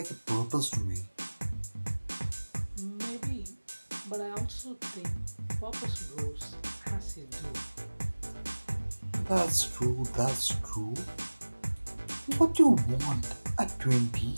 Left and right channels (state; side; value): inverted; both; correlation -1.00